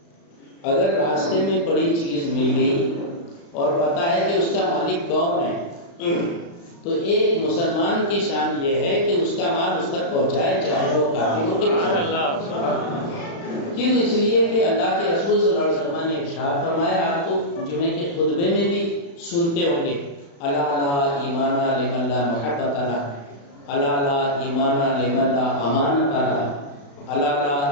اگر راستے میں پڑی چیز مل گئی اور پتہ ہے کہ اس کا مالک کون ہے، تو ایک مسلمان کی شان یہ ہے کہ اس کا مال اس تک پہنچائے، چاہے وہ کافر ہو کہ کیوں؟ اس لیے کہ اللہ کے رسول صلی اللہ علیہ وسلم نے ارشاد فرمایا، آپ تو جمعے کے خطبے میں بھی سنتے ہوں گے، الا لا ایمان لمن لا محبت له، الا لا ایمان لمن لا امانت له، الا لا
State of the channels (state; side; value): late; right; 35 ms